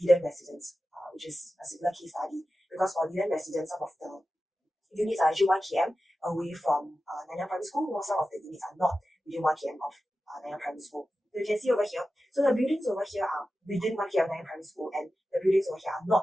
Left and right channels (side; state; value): both; normal; correlation 0.93